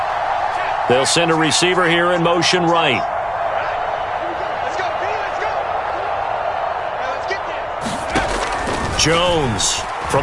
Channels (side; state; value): both; identical; correlation 1.00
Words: They'll send a receiver here in motion right. Let's go, let's go. Let's get there. Jones